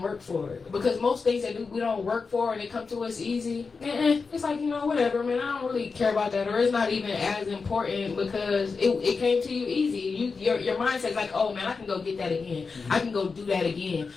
work for it. Because most things that we don't work for and they come to us easy, it's like, whatever, man, I don't really care about that. Or it's not even as important because it came to you easy. Your mindset's like, oh, man, I can go get that again. I can go do that again.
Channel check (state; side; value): quieter; right; 4.7 dB